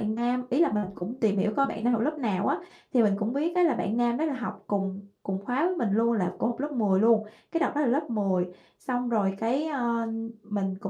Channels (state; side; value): identical; both; correlation 1.00